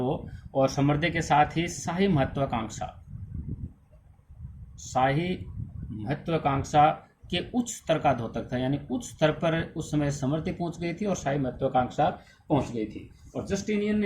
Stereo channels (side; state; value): both; identical; correlation 1.00